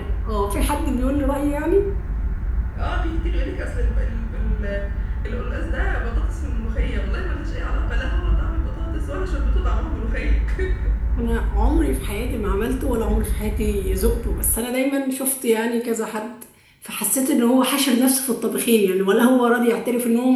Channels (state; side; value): identical; both; correlation 1.00